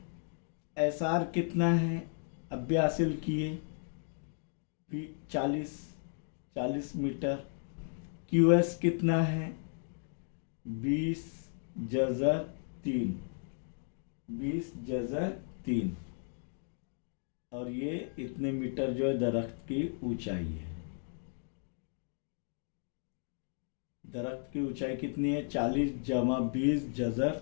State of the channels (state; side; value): silent; right; 55 dB below the other